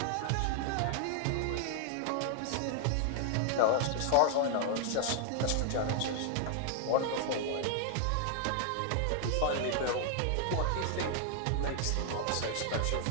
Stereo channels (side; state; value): both; different; correlation 0.00